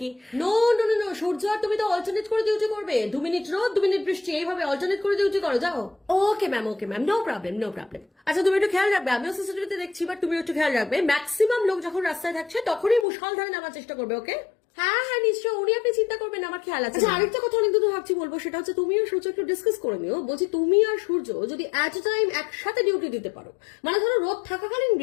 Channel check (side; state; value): right; drops out; at 13.1 s